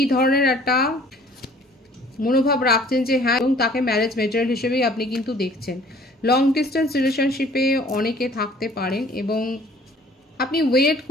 ধরনের একটা মনোভাব রাখছেন যে হ্যাঁ, এবং তাকে ম্যারেজ মেটেরিয়াল হিসেবেই আপনি কিন্তু দেখছেন। লং ডিস্টেন্স রিলেশনশিপে অনেকে থাকতে পারেন এবং আপনি ওয়েট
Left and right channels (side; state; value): both; normal; correlation 0.54